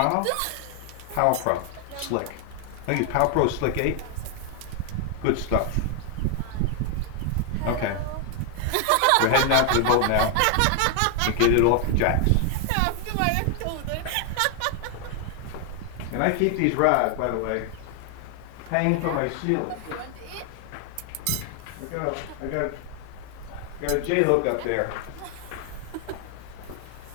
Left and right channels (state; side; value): different; both; correlation 0.00